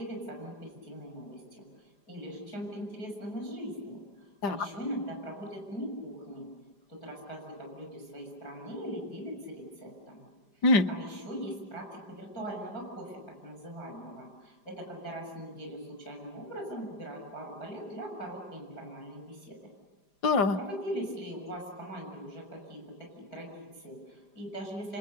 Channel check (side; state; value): right; late; 5.0 ms